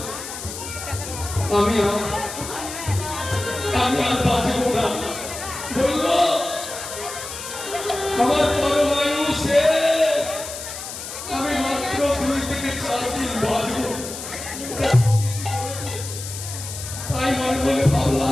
আমি আর বাঁচব না। বললো আমার পরমায়ু শেষ, আমি মাত্র 2 থেকে 4 দিন বাঁচব। তাই মনে মনে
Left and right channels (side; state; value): left; noise; hiss, 9 dB below the sound